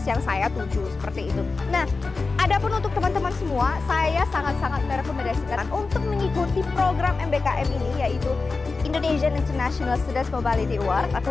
yang saya tuju seperti itu. Nah, adapun untuk teman-teman semua, saya sangat-sangat merekomendasikan untuk mengikuti program MBKM ini, yaitu Indonesian International Students Mobility Award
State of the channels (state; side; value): quieter; right; 4.0 dB